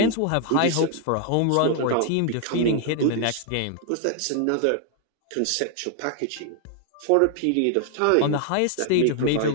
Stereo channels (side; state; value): both; different; correlation 0.00